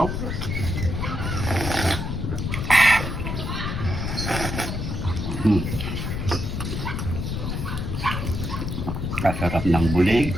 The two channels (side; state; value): left; noise; rumble, 3 dB below the sound